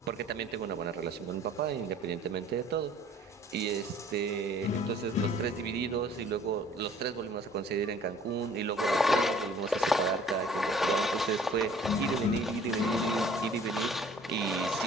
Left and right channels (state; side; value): normal; both; correlation 0.53